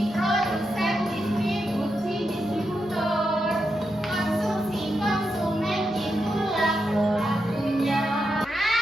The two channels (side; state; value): both; normal; correlation 0.86